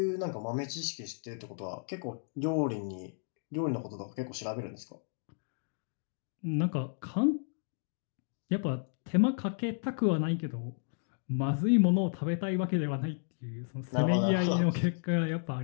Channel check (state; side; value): silent; right; 56 dB below the other